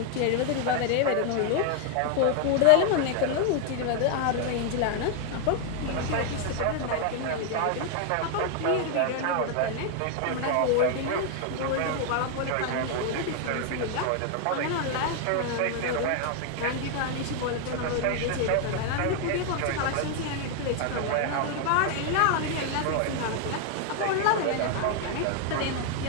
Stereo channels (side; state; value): both; different; correlation 0.00